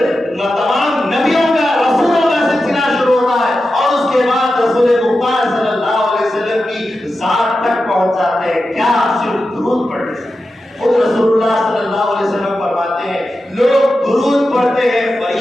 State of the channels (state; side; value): normal; both; correlation 0.91